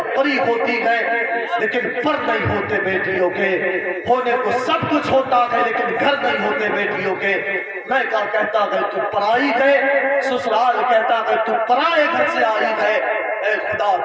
پری ہوتی ہیں لیکن پر نہیں ہوتے بیٹیوں کے. ہونے کو سب کچھ ہوتا ہے لیکن گھر نہیں ہوتے بیٹیوں کے. میں کہتا ہے تو پرائی ہے, سسرال کہتا ہے تو پرائے گھر سے آئی ہے. اے خدا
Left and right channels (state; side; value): identical; both; correlation 1.00